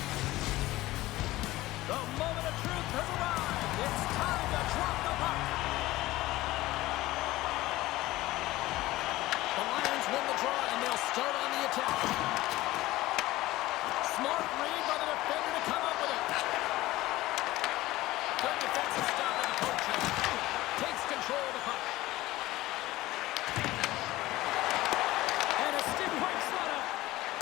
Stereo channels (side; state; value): right; quieter; 17.6 dB